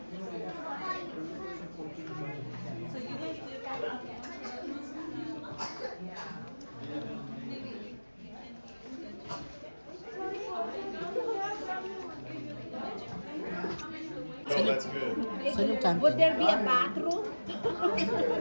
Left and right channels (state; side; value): inverted; both; correlation -1.00